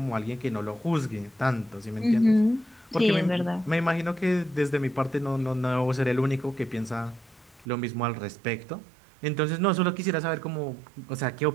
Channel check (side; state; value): left; drops out; at 7.7 s